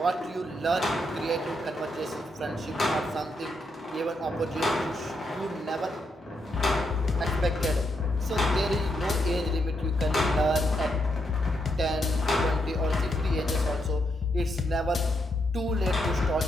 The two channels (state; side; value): normal; both; correlation 0.80